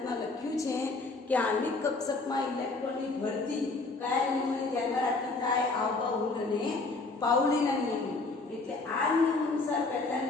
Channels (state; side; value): quieter; right; 3.6 dB